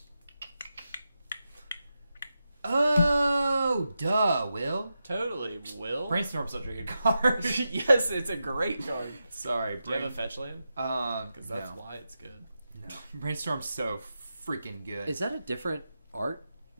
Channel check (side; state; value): both; inverted; correlation -0.89